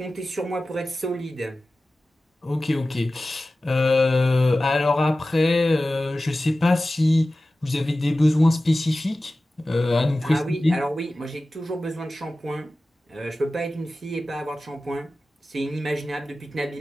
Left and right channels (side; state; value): both; normal; correlation 0.95